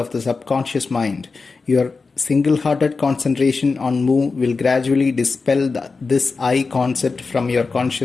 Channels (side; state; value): right; quieter; 4.3 dB